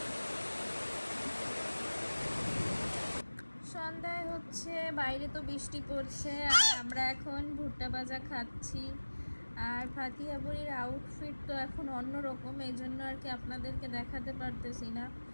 সন্ধ্যায় হচ্ছে বাইরে তো বৃষ্টি পড়ছে আর আমরা এখন ভুট্টা ভাজা খাচ্ছি। আর ফাতিহা বুড়ির আউটফিট তো এখন অন্যরকম, এই জন্য আর কি আপনাদেরকে দেখাতে পারতেছি না।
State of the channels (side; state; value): both; inverted; correlation -1.00